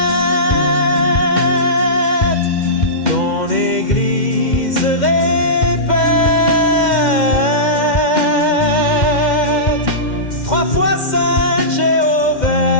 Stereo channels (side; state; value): right; late; 2.1 ms